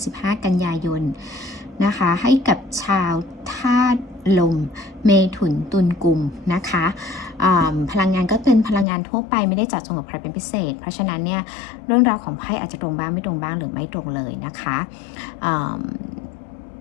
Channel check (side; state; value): right; drops out; at 8.8 s